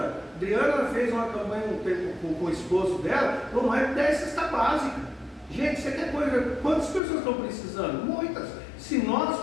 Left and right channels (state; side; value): drops out; right; at 7.0 s